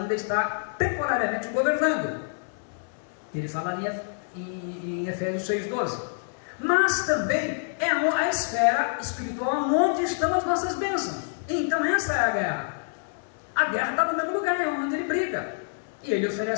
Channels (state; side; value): silent; right; 60 dB below the other